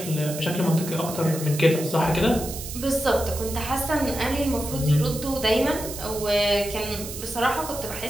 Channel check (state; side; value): noise; right; hiss, 9 dB below the sound